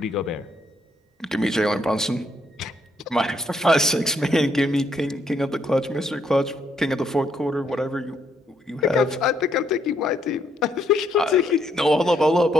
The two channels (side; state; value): both; normal; correlation 0.73